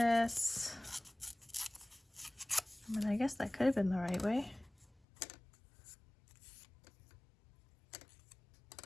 I mean, I guess that could have been the right way.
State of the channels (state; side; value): drops out; right; at 5.0 s